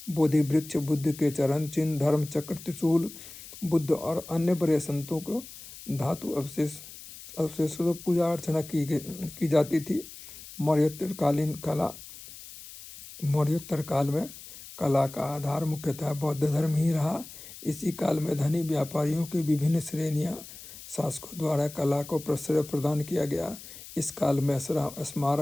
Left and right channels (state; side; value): noise; left; hiss, 15 dB below the sound